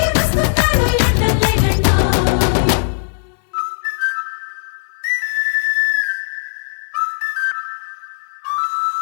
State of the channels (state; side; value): silent; right; digital silence